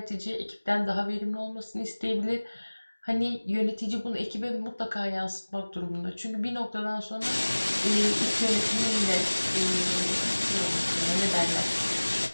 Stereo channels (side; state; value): both; inverted; correlation -1.00